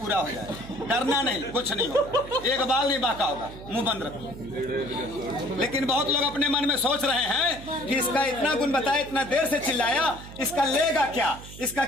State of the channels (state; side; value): noise; right; hum, 15 dB below the sound